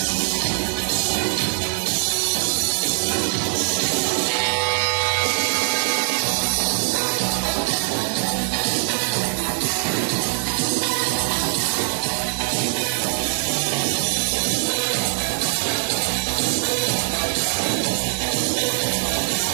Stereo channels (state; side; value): silent; left; digital silence